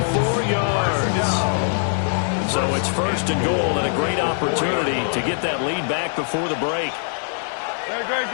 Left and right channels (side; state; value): right; silent; 64 dB below the other